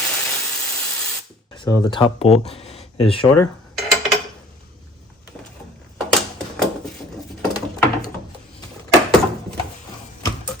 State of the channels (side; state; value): both; normal; correlation 0.51